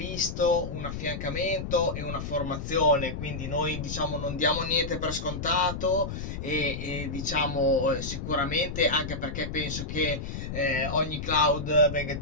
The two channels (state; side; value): noise; left; rumble, 6 dB below the sound